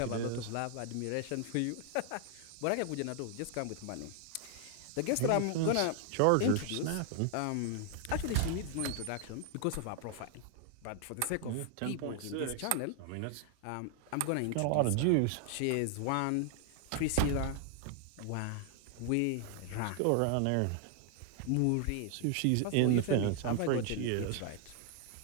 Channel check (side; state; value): both; different; correlation 0.00